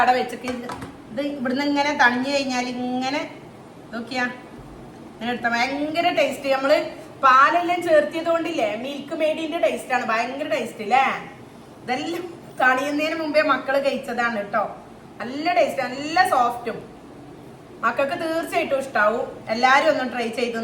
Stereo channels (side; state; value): both; identical; correlation 1.00